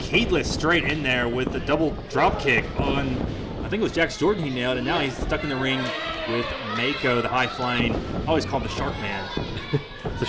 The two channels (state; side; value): identical; both; correlation 1.00